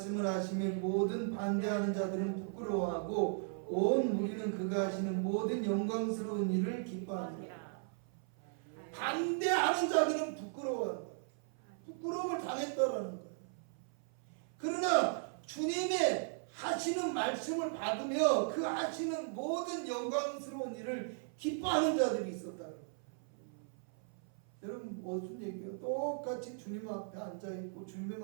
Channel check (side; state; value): left; silent; 53 dB below the other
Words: 하시면 모든 반대하는 자들은 부끄러워하고 온 무리는 그가 하시는 모든 영광스러운 일을 기뻐하니라. 반대하는 자들은 부끄러워한다. 부끄러움을 당했다라는 거예요. 그러나 주님의 하시는 말씀을 받으며 그 하시는 모든 영광스러운 일을 기뻐하는 자들이 있었다는 거예요. 여러분, 무슨 얘기예요? 똑같이 주님 앞에 앉아있고 주님의